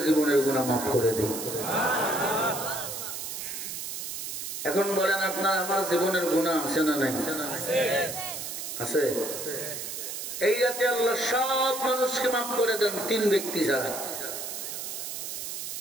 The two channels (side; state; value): right; noise; hiss, 6 dB below the sound